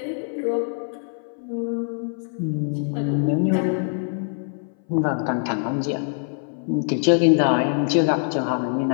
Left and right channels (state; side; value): silent; right; 59 dB below the other